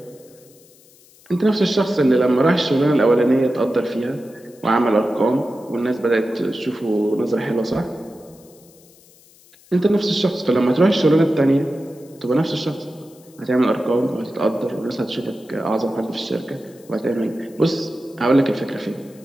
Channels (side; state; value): left; noise; hiss, 27 dB below the sound